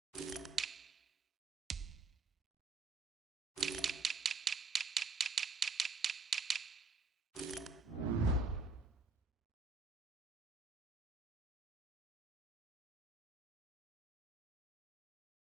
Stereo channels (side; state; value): left; quieter; 4.0 dB